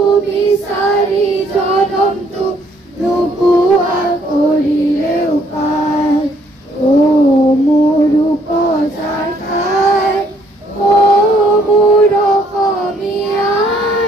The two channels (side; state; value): both; normal; correlation 0.66